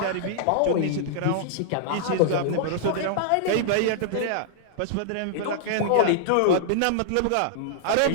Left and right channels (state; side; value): different; both; correlation -0.01